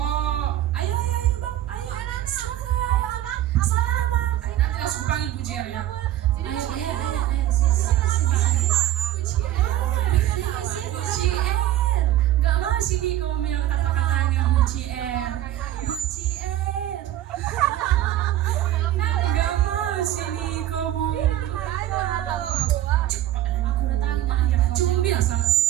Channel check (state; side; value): quieter; left; 13.2 dB